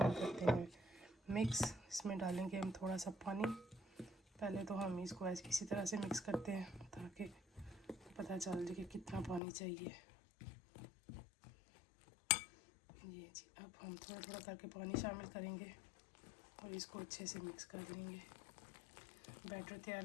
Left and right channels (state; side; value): drops out; right; at 9.4 s